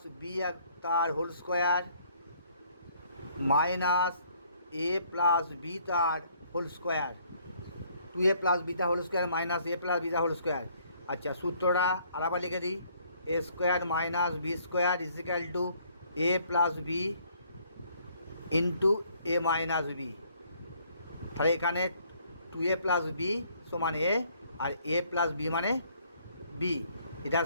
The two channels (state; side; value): inverted; both; correlation -0.63